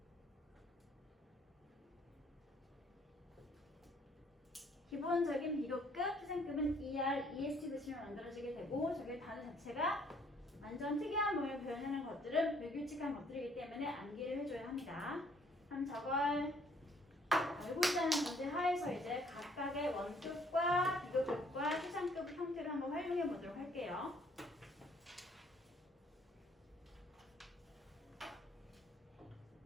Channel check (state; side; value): normal; both; correlation 0.63